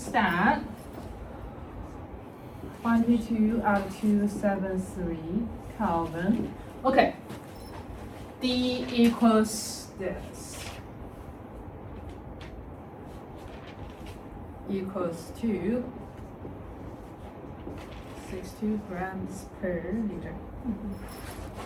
that. 22 out of 273 Kelvin. Okay. D equals this. Equals to 62 grams per liter.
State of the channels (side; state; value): both; identical; correlation 1.00